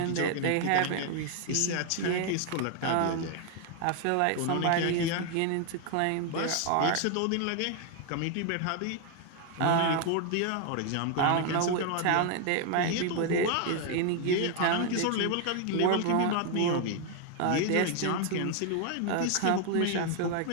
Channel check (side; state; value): both; different; correlation 0.00